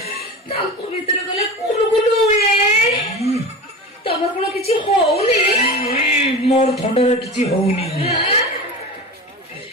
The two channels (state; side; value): normal; both; correlation 0.30